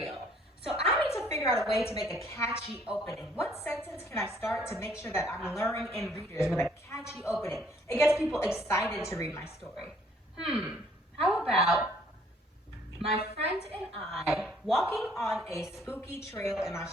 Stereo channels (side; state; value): both; normal; correlation 0.62